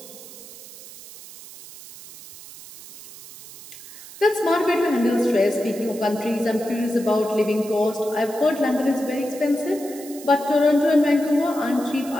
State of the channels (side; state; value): right; noise; hiss, 17 dB below the sound